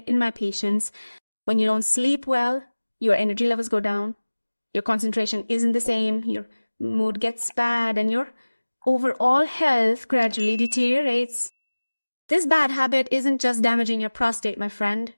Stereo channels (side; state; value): both; inverted; correlation -1.00